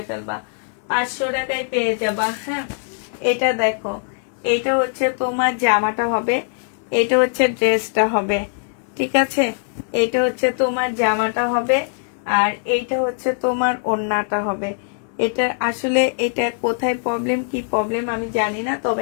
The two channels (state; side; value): silent; right; 61 dB below the other